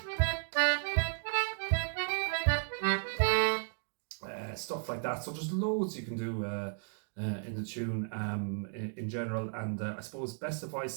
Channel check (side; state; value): left; silent; 55 dB below the other